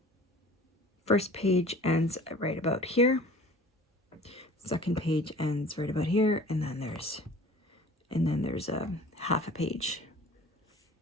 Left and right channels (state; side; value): normal; both; correlation 0.46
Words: first page ends right about here. Second page ends right about here, and then there's a half a page.